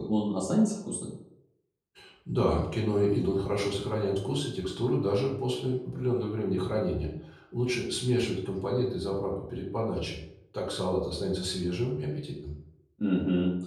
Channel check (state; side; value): identical; both; correlation 1.00